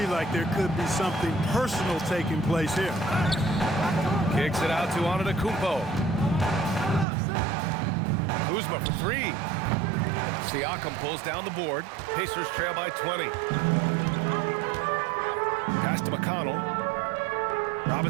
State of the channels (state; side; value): drops out; left; at 7.1 s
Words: like there could be something personal taking place here. Kicks it out to Antetokounmpo. Kuzma for 3. Siakam pulls down the board. Pacers trail by 20. Pass to McConnell.